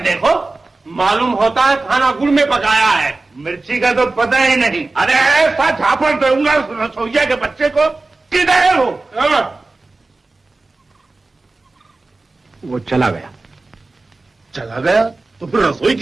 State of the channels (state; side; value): quieter; left; 3.3 dB